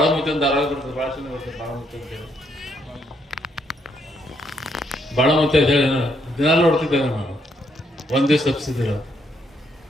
ಅಂತ ಆರೋಗ್ಯ ಬರ್ತದೆ, ಭಾಳ ಚೆನ್ನಾಗಿ ಬರ್ತದೆ ಬಾಳಮುತ್ತಿ ಅಂತ ಹೇಳಿ. ಬಾಳಮುತ್ತಿ ಅಂತ ಹೇಳಿ ದಿನ ನೋಡ್ತಿದ್ದೆ ನಾನು, ಒಂದ್ ದಿವಸ ತಪ್ಪಿಸಿದಿಲ್ಲ.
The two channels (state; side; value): normal; both; correlation 0.74